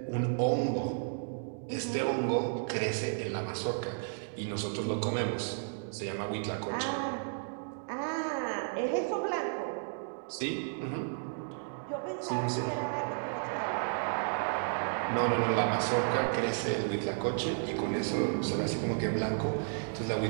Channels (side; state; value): left; silent; digital silence